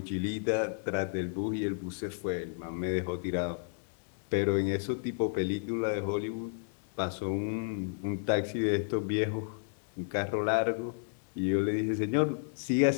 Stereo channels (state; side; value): silent; right; digital silence